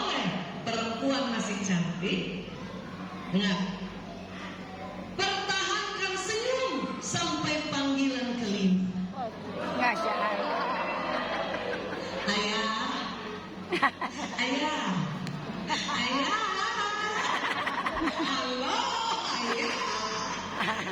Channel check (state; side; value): identical; both; correlation 1.00